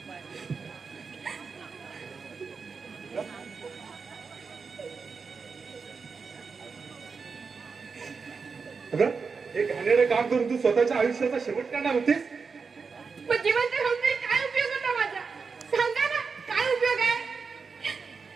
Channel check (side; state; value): left; quieter; 5.1 dB